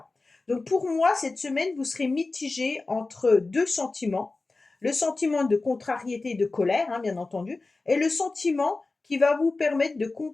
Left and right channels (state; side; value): quieter; right; 3.5 dB